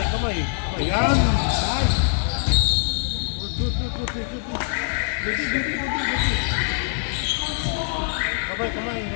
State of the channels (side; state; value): right; silent; 60 dB below the other